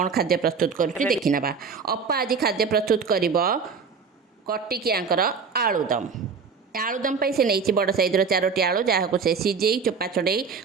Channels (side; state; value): left; quieter; 5.5 dB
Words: खाद्य प्रस्तुत कर देखी ना अपा आज खाद्य प्रस्तुत कर कटिकियांकर आलुदम आलुदम से नहीं बड़ साइज्र 4टी आलू जहाँ को से सीझे चोपा छड़े